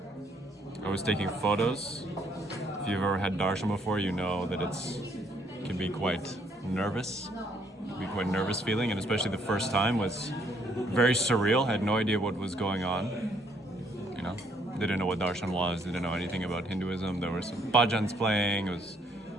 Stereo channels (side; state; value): both; normal; correlation 0.67